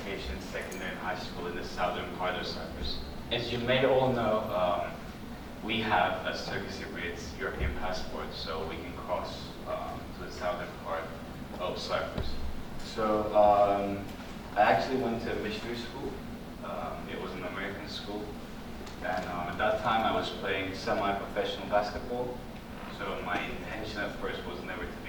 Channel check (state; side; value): identical; both; correlation 1.00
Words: secondary and high school in the southern part of Cyprus. As you may all know, we have, as Turkish Cypriots, European passports, so we can cross to the southern part of Cyprus. So I actually went to a missionary school. It was an American school. And at that time, I was playing semi-professional basketball. So my intention at first was never to